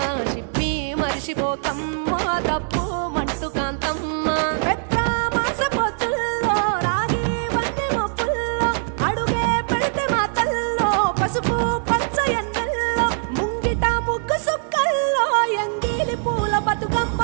షిప్పి మరిషిపోకమ్మో తప్పు మంటు కాంతమ్మ పెద్ద మాస పొత్తుల్లో రాగి వంటి మొప్పుల్లో అడుగే పెడితే మాతల్లో పసుపు పచ్చ ఎన్నెల్లో ముంగిట ముగ్గు సుక్కల్లో ఎంగిలి పూల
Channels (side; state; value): left; silent; 60 dB below the other